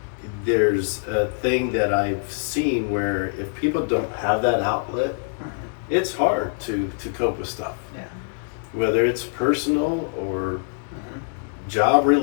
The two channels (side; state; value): right; silent; 60 dB below the other